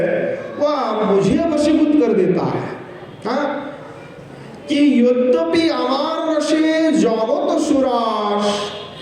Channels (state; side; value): identical; both; correlation 1.00